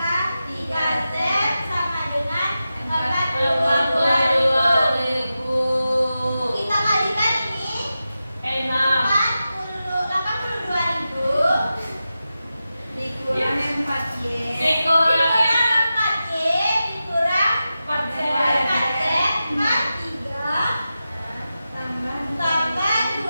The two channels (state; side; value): inverted; both; correlation -0.92